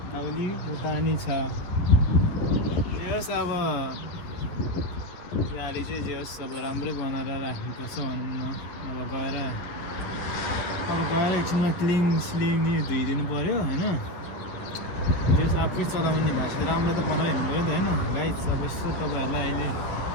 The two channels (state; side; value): late; right; 11 ms